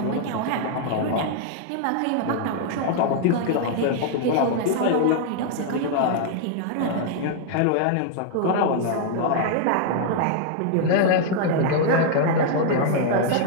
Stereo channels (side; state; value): both; different; correlation -0.01